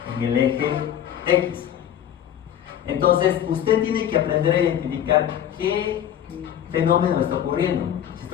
en el eje X. Entonces, usted tiene que aprender a identificar qué fenómeno está ocurriendo. Si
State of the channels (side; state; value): right; quieter; 10.3 dB